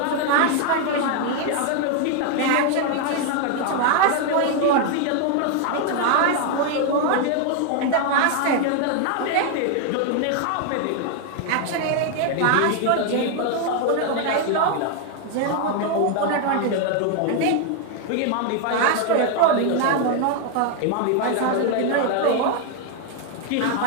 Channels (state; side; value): different; both; correlation 0.00